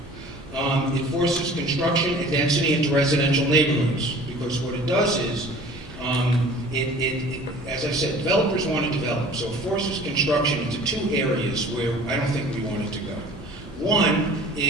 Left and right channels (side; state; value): both; normal; correlation 0.46